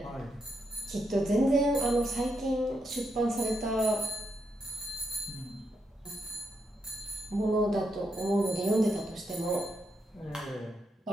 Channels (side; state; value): both; normal; correlation 0.81